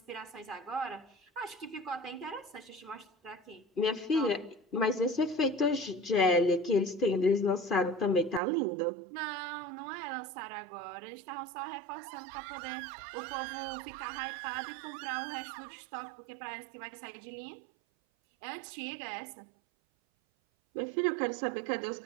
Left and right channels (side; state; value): left; drops out; at 8.4 s